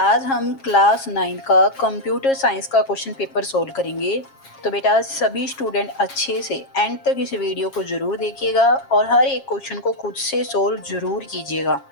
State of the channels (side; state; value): right; late; 7.4 ms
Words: हम क्लास 9 का कंप्यूटर साइंस का क्वेश्चन पेपर सोल्व करेंगे। तो बेटा सभी स्टूडेंट अच्छे से एंड तक इस वीडियो को ज़रूर देखिएगा और हर एक क्वेश्चन को खुद से सोल्व ज़रूर कीजिएगा।